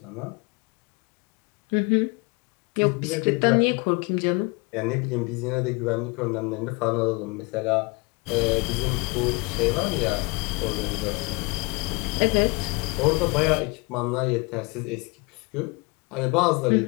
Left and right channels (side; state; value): right; quieter; 28.3 dB